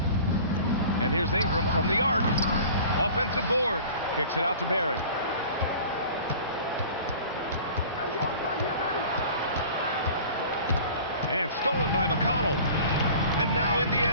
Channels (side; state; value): both; inverted; correlation -0.43